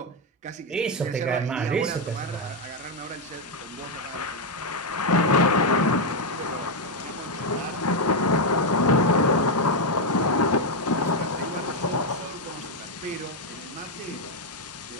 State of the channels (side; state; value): both; normal; correlation 0.02